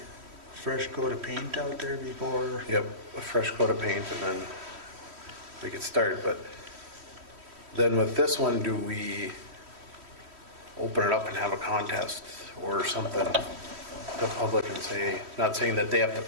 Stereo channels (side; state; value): left; late; 3.1 ms